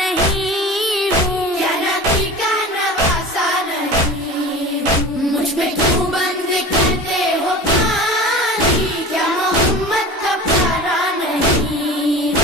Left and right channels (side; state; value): both; normal; correlation 0.35